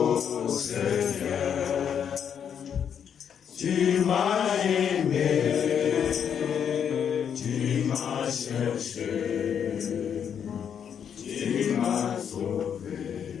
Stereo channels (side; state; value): right; quieter; 8.1 dB